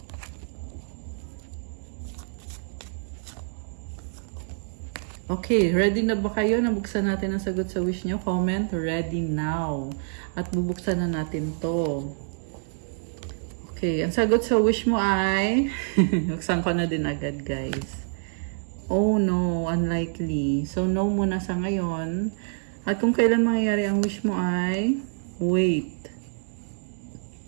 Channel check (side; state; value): left; silent; digital silence